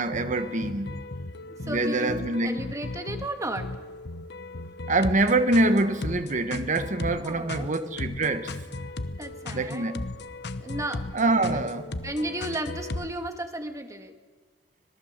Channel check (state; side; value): normal; both; correlation 0.41